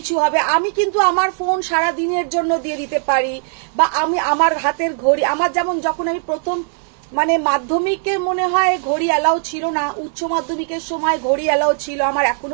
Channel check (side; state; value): left; silent; 58 dB below the other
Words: হবে, আমি কিন্তু আমার ফোন সারা দিনের জন্য দিয়ে দিতে পারি, বা আমি আমার হাতের ঘড়ি, আমার যেমন যখন আমি প্রথম মানে মাধ্যমিকে মনে হয় ঘড়ি অ্যালাউ ছিল না, উচ্চ মাধ্যমিকের সময় ঘড়ি অ্যালাউ ছিল, আমার